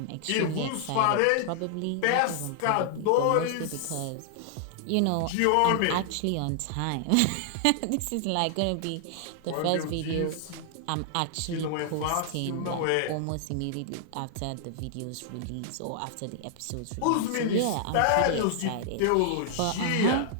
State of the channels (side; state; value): both; different; correlation -0.01